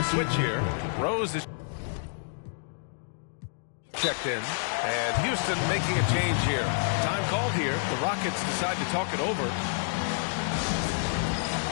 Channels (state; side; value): silent; right; digital silence